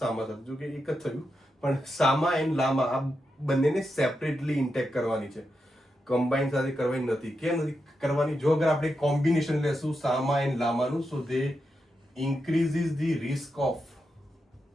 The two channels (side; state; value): both; normal; correlation 0.87